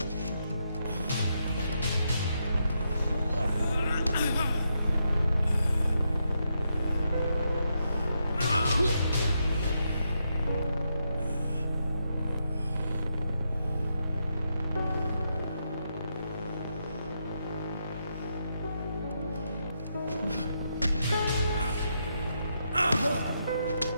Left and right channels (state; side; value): inverted; both; correlation -0.82